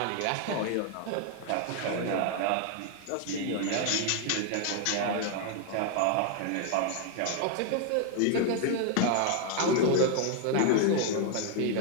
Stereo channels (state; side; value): different; both; correlation 0.00